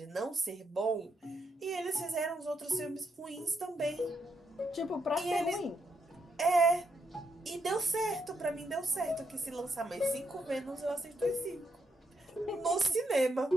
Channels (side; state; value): both; normal; correlation 0.79